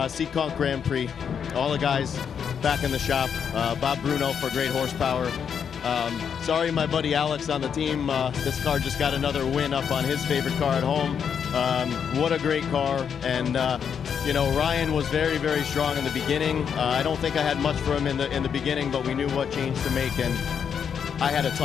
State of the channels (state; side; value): quieter; right; 7.4 dB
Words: Grand Prix, all the guys back in the shop. Bob Bruno for great horsepower. Sorry, my buddy Alex on the team. This car just got another win up on his favorite car at home. What a great car. And you know, Ryan was very, very strong in the beginning. I don't think I had much for him in the beginning, but we knew what change to make, and I had a